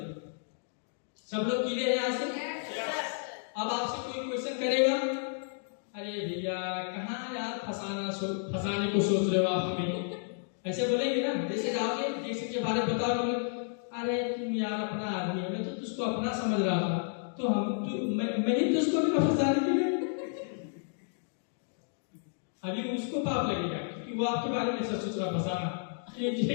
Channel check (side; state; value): right; silent; digital silence